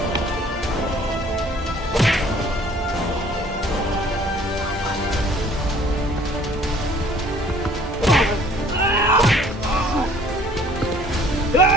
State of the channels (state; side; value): normal; both; correlation 0.55